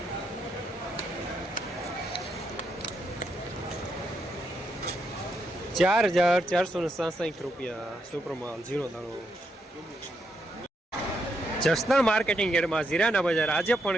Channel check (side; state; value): both; normal; correlation 0.79